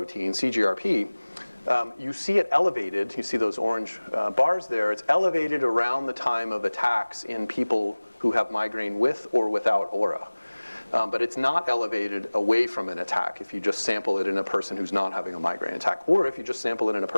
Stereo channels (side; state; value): both; inverted; correlation -1.00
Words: CGRP, you see it elevated. You see those orange bars there. It's elevated around the time of attacks in people who have migraine with or without aura. But it's not elevated away from an attack if you just sample it in a person who's not having a migraine attack, or if you just sample it in a